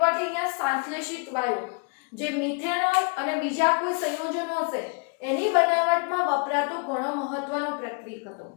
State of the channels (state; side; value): quieter; right; 36.6 dB